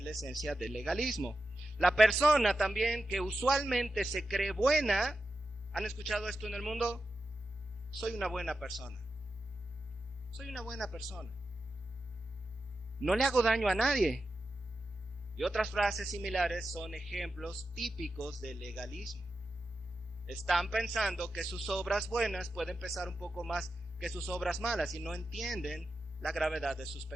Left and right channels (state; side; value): normal; both; correlation 0.91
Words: la esencia del legalismo. La persona también que usualmente se cree buena, ¿han escuchado esto en el mundo? Soy una buena persona. Soy una buena persona. No le hago daño a nadie. Y otras frases similares son ejemplos típicos del legalismo. Están pensando que sus obras buenas pueden pesar un poco más que sus obras malas y no entienden la gravedad de sus